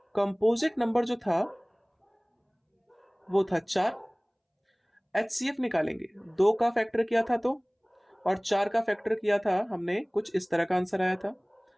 कंपोजिट नंबर जो था वो था 4। एचसीएफ निकालेंगे, 2 का फैक्टर किया था तो, और 4 का फैक्टर किया था हमने, कुछ इस तरह का आंसर आया था,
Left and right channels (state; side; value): identical; both; correlation 1.00